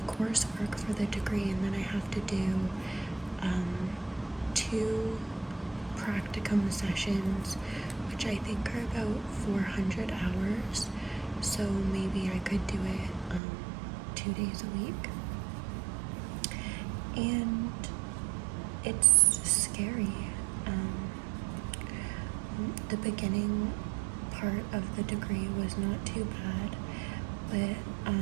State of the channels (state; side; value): drops out; left; at 13.4 s